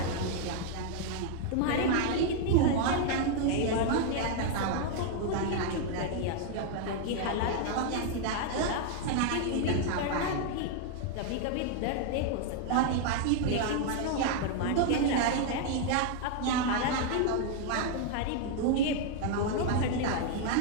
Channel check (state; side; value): different; both; correlation 0.00